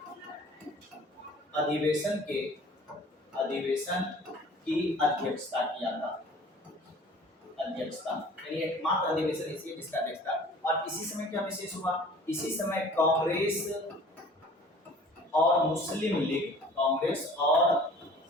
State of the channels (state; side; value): normal; both; correlation 0.48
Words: अधिवेशन की अध्यक्षता किया था। अध्यक्षता यानी एकमात्र अधिवेशन इसी जिसका अध्यक्षता। और इसी समय क्या विशेष हुआ? इसी समय कांग्रेस और